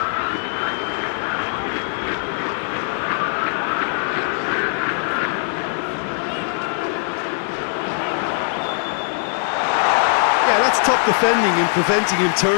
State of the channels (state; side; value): silent; right; digital silence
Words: Yeah, that's top defending and preventing him